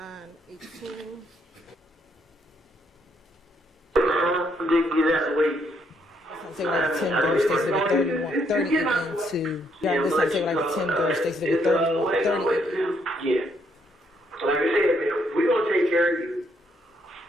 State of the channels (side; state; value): both; normal; correlation 0.73